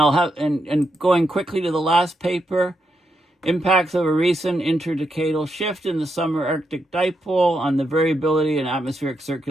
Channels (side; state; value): both; normal; correlation 0.82